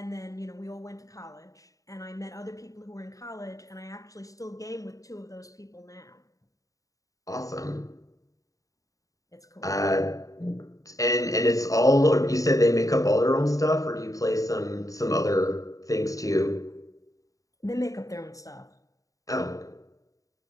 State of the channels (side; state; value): right; late; 0.16 ms